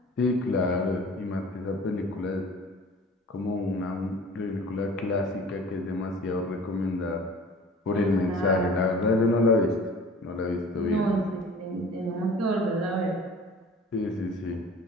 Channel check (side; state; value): both; normal; correlation 0.45